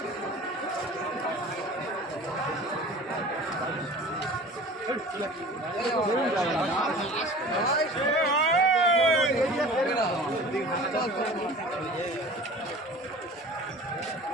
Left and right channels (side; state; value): both; normal; correlation 0.41